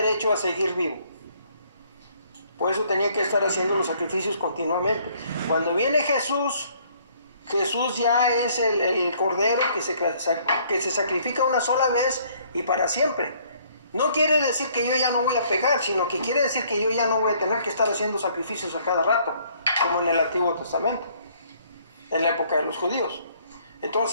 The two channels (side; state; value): both; inverted; correlation -0.62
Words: a seguir vivo. Por eso tenía que estar haciendo los sacrificios continuamente. Cuando viene Jesús, Jesús ya es el cordero que se sacrifica una sola vez y para siempre. No quiere decir que yo ya no voy a pecar, sino que quiere decir que yo ya no voy a tener que estar haciendo sacrificios a cada rato, como en el Antiguo Testamento, en la época de los judíos.